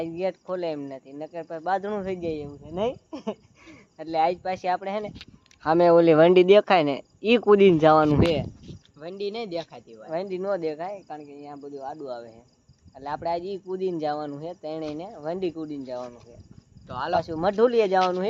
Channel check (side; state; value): both; identical; correlation 1.00